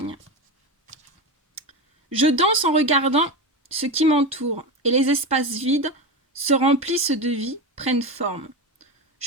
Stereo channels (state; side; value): normal; both; correlation 0.20